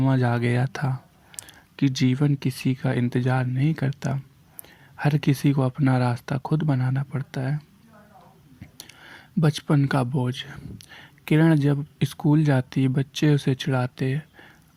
आ गया था कि जीवन किसी का इंतजार नहीं करता, हर किसी को अपना रास्ता खुद बनाना पड़ता है। बचपन का बोझ। किरण जब स्कूल जाती, बच्चे उसे चिढ़ाते,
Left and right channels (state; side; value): identical; both; correlation 1.00